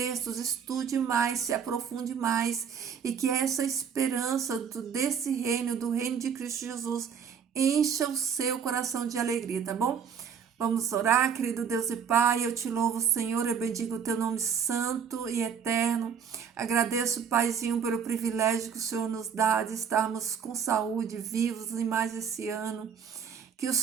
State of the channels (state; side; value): quieter; left; 7.2 dB